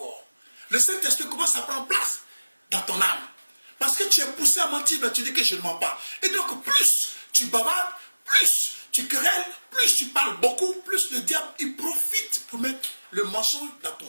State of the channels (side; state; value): both; inverted; correlation -1.00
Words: Le Saint-Esprit commence à prendre place dans ton âme. Parce que tu es poussé à mentir, mais tu dis que je ne mens pas. Et donc plus tu bavardes, plus tu querelles, plus tu parles beaucoup, plus le diable il profite pour mettre le mensonge dans